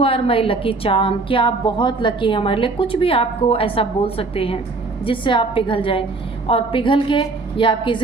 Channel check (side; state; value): left; quieter; 3.7 dB